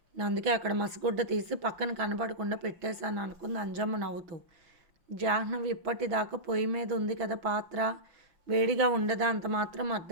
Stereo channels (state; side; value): late; left; 6.1 ms